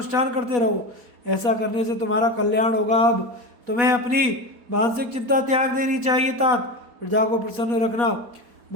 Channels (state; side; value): late; left; 4.1 ms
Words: करते रहो। ऐसा करने से तुम्हारा कल्याण होगा। अब तुम्हें अपनी मानसिक चिंता त्याग देनी चाहिए। तात प्रजा को प्रसन्न रखना,